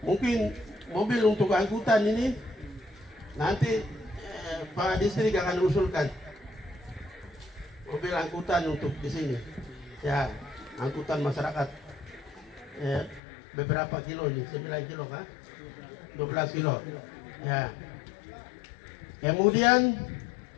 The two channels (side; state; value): right; drops out; at 13.2 s